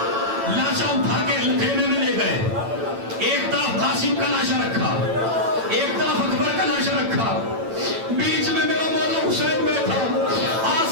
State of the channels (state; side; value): late; left; 8.9 ms